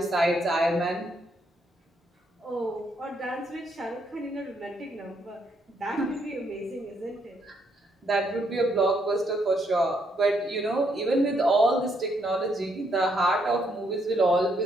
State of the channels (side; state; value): both; normal; correlation 0.74